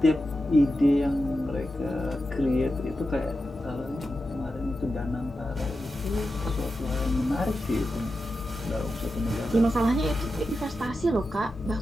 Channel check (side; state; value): both; normal; correlation 0.90